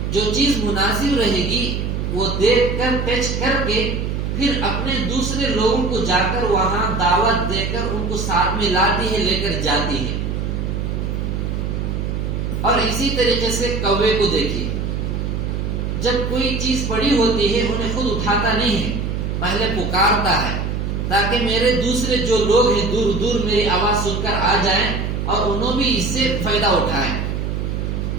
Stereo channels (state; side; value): noise; right; hum, 2 dB below the sound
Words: جو چیز مناسب رہے گی وہ دیکھ کر ٹچ کر کے پھر اپنے دوسرے لوگوں کو جا کر وہاں دعوت دے کر ان کو ساتھ میں لاتی ہے، لے کر جاتی ہے. اور اسی طریقے سے کوے کو دیکھیے، جب کوئی چیز پڑی ہوتی ہے انہیں خود اٹھاتا نہیں ہے، پہلے پکارتا ہے تاکہ میرے دوسرے جو لوگ ہیں دور دور میری آواز سن کر آ جائیں اور انہوں بھی اس سے فائدہ اٹھائیں.